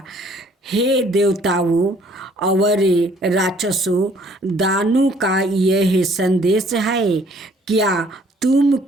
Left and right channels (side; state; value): both; normal; correlation 0.60